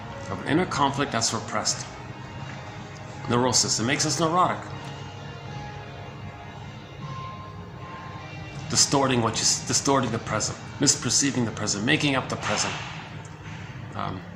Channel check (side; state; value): both; identical; correlation 1.00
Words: of an inner conflict that's repressed. Neurosis. It makes us neurotic. Distorting the present, misperceiving the present, making up the present.